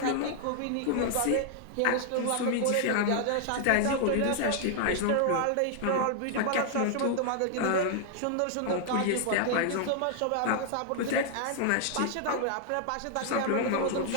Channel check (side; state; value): both; different; correlation 0.00